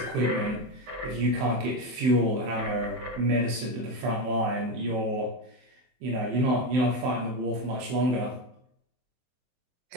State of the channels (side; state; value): left; late; 23 ms